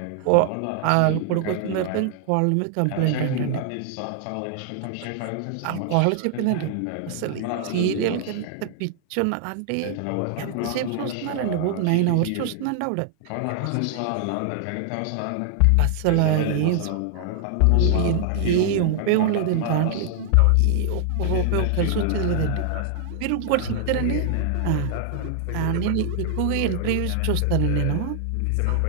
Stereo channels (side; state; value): both; different; correlation 0.00